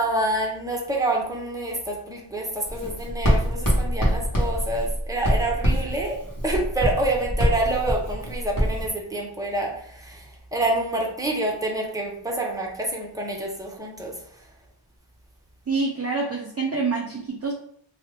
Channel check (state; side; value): normal; both; correlation 0.48